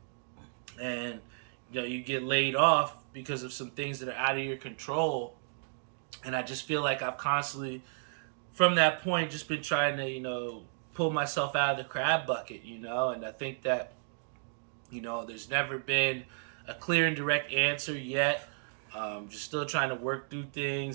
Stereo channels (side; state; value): left; silent; digital silence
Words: and, you get laid off because of some things that are out of your control. And I just feel like I've constantly, from that point, just been trying to, pull myself out of the crab bucket, and I think that, there's never been a clear and direct answer yet. Just still trying to work through